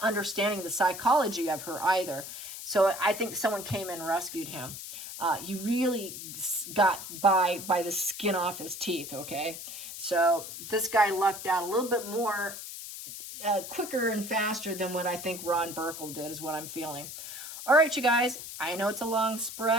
understanding the psychology of her either. So I think someone came in and rescued him. He really got by the skin off his teeth, okay? So this guy lucked out a little bit more, quicker and faster than what I think Ron Burkle did, is what I'm feeling. All right, you guys, I know it's a long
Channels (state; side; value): noise; left; hiss, 10 dB below the sound